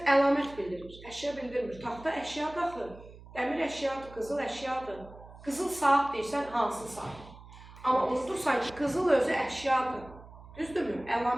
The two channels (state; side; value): noise; right; hum, 19 dB below the sound